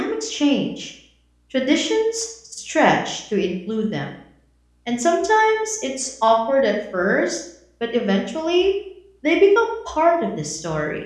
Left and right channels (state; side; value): identical; both; correlation 1.00